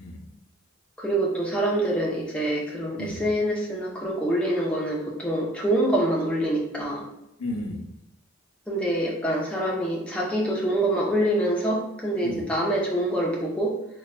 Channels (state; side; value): normal; both; correlation 0.53